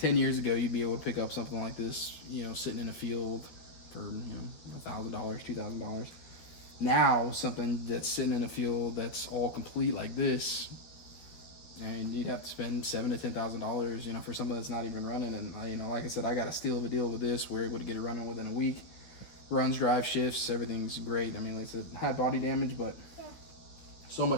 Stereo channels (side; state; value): right; late; 12 ms